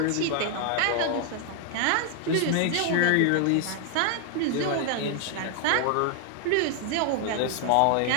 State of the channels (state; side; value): different; both; correlation 0.00